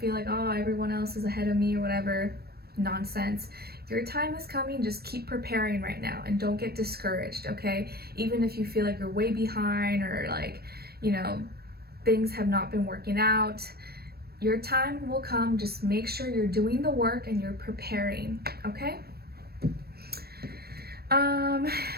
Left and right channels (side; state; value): left; late; 0.46 ms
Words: like, oh, everyone else is ahead of me or whatever nonsense. Your time is coming. Just keep preparing right now and don't get discouraged, okay? Even if you feel like you're way behind, or like, you know, things have not been working out, your time will come. Just make sure you're doing the work and you're preparing, okay?